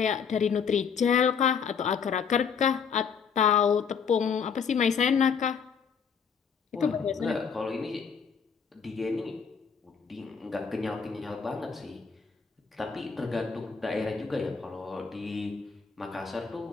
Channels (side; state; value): right; quieter; 6.4 dB